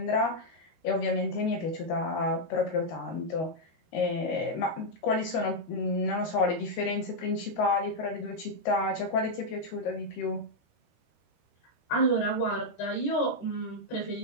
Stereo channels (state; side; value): late; right; 13 ms